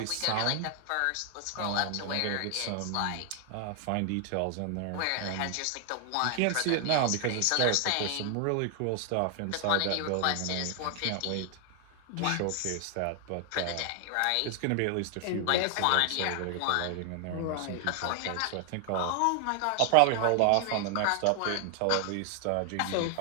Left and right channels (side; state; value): both; different; correlation 0.00